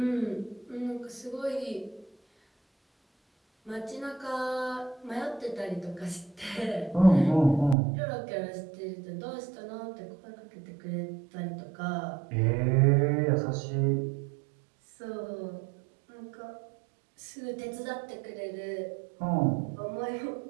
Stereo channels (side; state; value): left; drops out; at 7.8 s